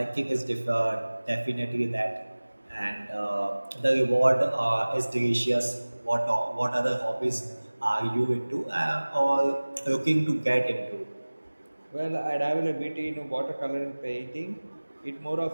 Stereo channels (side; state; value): both; inverted; correlation -1.00